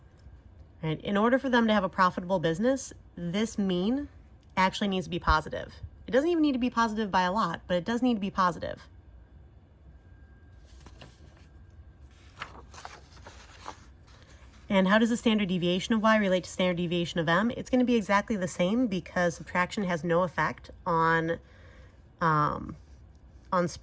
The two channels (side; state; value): both; identical; correlation 1.00